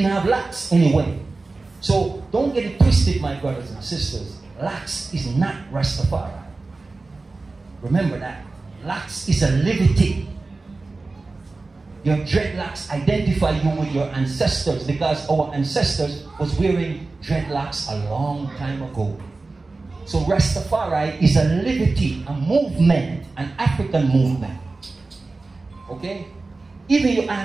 have locks anyway. So don't get it twisted, my brothers and sisters. Locks is not Rastafari. Remember that. Locks is a liberty. Your dreadlocks identify you with your ancestors, because our ancestors was wearing dreadlocks a long time ago. So Rastafari is a liberty, a movement, an African movement. Okay? Even you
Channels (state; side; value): quieter; left; 3.5 dB